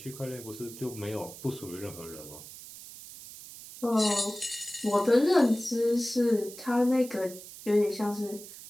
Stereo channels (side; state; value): right; noise; hiss, 15 dB below the sound